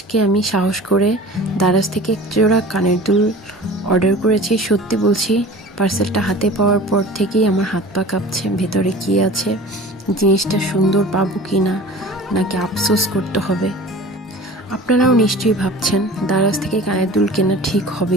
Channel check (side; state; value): both; normal; correlation 0.41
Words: আমি সাহস করে দারাজ থেকে এক জোড়া কানের দুল অর্ডার করেছি। সত্যি বলছি, পার্সেলটা হাতে পাওয়ার পর থেকেই আমার হাত পা কাঁপছে। ভেতরে কী আছে, জিনিসটা সুন্দর পাবো কি না, নাকি আফসোস করতে হবে। আপনারাও নিশ্চয়ই ভাবছেন দারাজ থেকে কানের দুল কেনা ঠিক